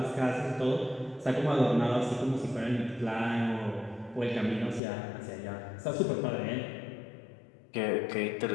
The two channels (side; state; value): right; drops out; at 4.8 s